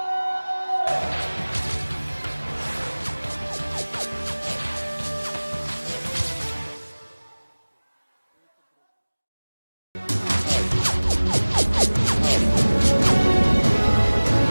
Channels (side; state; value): both; inverted; correlation -1.00